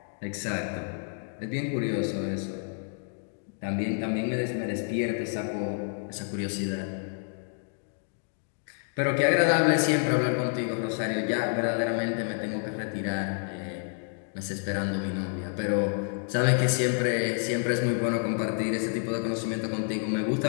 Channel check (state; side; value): silent; right; 59 dB below the other